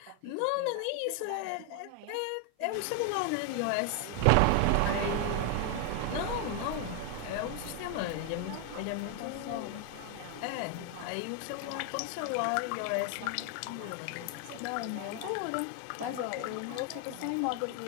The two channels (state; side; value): different; both; correlation 0.01